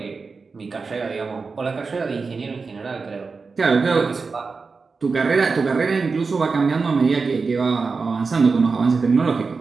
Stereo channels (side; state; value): left; quieter; 4.6 dB